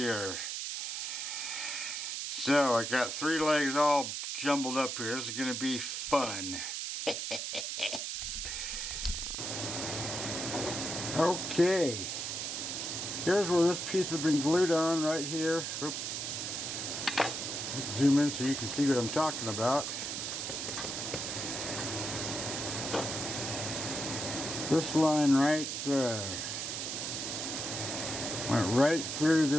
So I got 3 legs all jumbled up here. This is going to be fun. Okay. Here's where this piece has been glued on right here. Oops. Let's zoom in so you can see what I'm talking about. This line right there went right through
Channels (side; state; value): right; noise; hiss, 3 dB below the sound